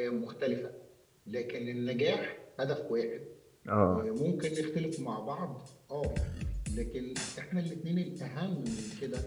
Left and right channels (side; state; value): both; identical; correlation 1.00